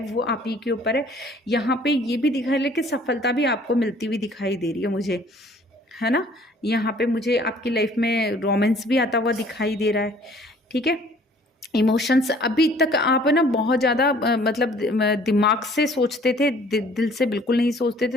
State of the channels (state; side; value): normal; both; correlation 0.55